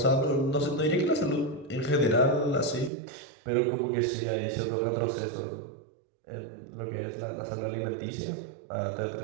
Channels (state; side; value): drops out; left; at 2.9 s